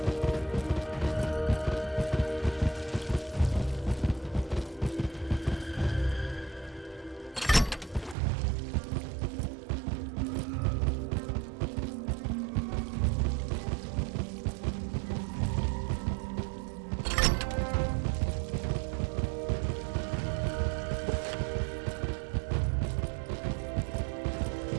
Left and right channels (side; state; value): left; drops out; at 8.2 s